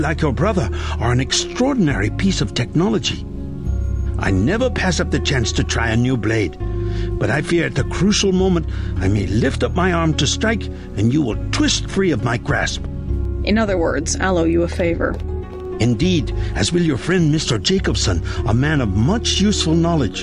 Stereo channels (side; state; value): both; identical; correlation 1.00